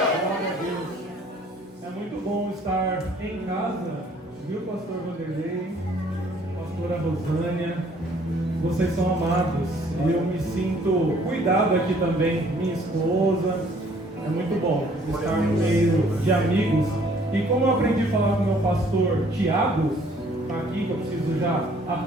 Deus. É muito bom estar em casa, viu, pastor Vanderlei, pastora Rosânia? Vocês são amados e eu me sinto cuidado aqui também, minha esposa. É muito bom estar no meio de amigos. E como eu aprendi a falar com o meu pastor Tiago, está aqui, que eu preciso já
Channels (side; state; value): both; normal; correlation 0.59